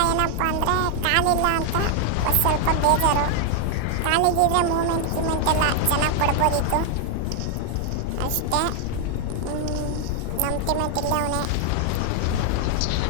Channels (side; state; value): both; different; correlation 0.00